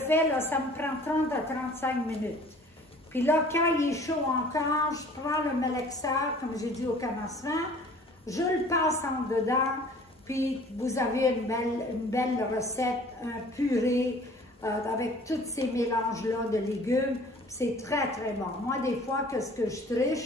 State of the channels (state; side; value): normal; both; correlation 0.50